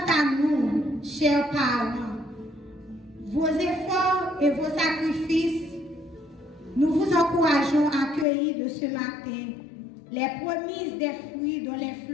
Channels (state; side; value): drops out; right; at 8.2 s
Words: à nous, chers parents, vos efforts et vos sacrifices, nous vous encourageons à cueillir de ce matin les promesses des fruits dont les